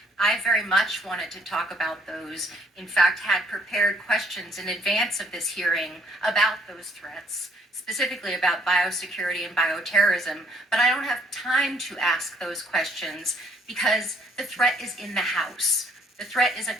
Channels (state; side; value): normal; both; correlation 0.65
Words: I very much wanted to talk about those. In fact, had prepared questions in advance of this hearing about those threats, specifically about biosecurity and bioterrorism, but I don't have time to ask those questions because the threat is in the House. The threat is